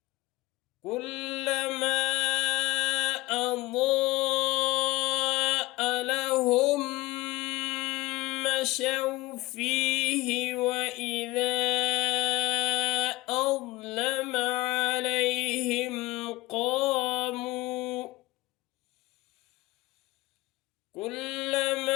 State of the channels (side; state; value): right; quieter; 19.8 dB